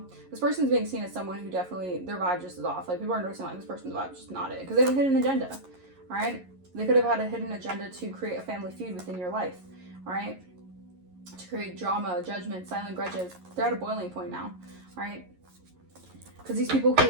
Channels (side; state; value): left; late; 11 ms